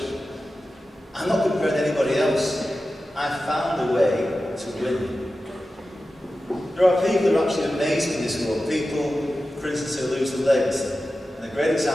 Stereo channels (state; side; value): normal; both; correlation 0.93